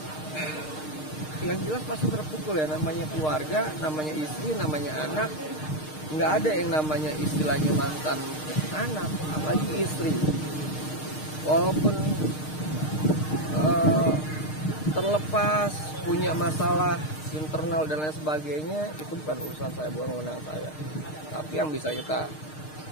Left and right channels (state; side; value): late; right; 6.5 ms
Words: Yang jelas pasti terpukul ya, namanya keluarga, namanya istri, namanya anak. Nggak ada yang namanya istilahnya mantan anak, apalagi istri. Walaupun terlepas punya masalah internal dan lain sebagainya, itu bukan urusan saya, bukan wewenang saya. Tapi yang bisa kita